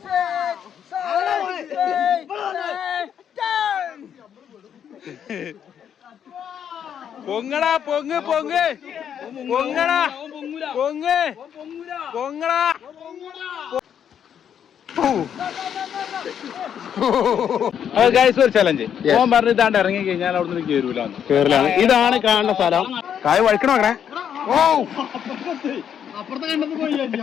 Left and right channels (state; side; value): quieter; right; 8.7 dB